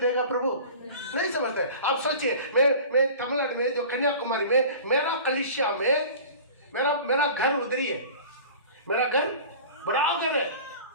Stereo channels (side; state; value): both; inverted; correlation -0.40